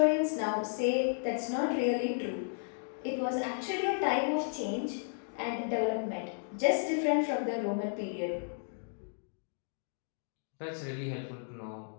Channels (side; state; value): right; silent; digital silence